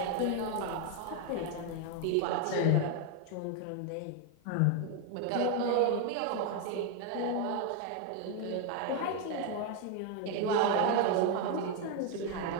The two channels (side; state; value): both; different; correlation 0.01